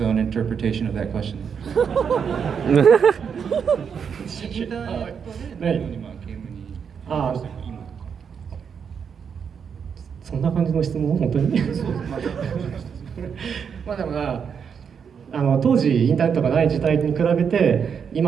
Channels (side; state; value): left; quieter; 6.9 dB